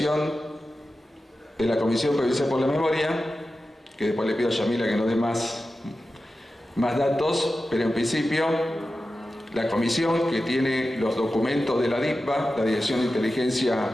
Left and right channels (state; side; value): normal; both; correlation 0.93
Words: de la Comisión Provincial por la Memoria, que después le pido a Yamila que nos dé más datos, pero en principio la comisión, que tiene los documentos de la DIPA, la Dirección de Inteligencia